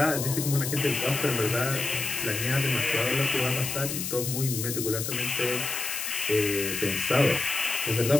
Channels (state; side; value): noise; left; hiss, 4 dB below the sound